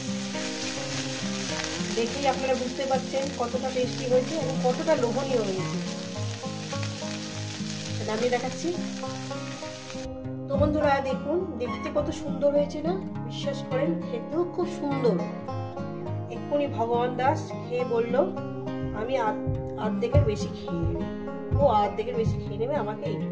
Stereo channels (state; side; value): identical; both; correlation 1.00